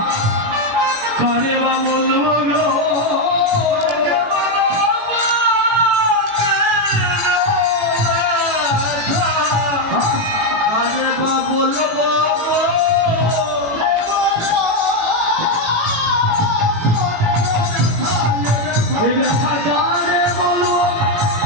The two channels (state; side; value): late; left; 18 ms